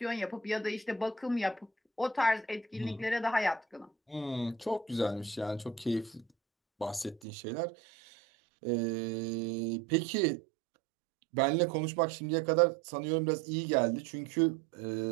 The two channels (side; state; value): left; drops out; at 7.2 s